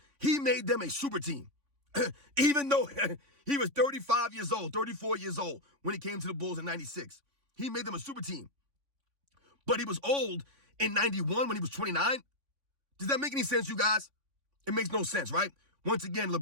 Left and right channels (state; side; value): late; left; 3.5 ms